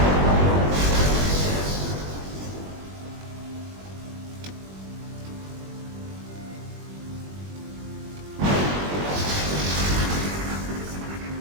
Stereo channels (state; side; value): late; left; 21 ms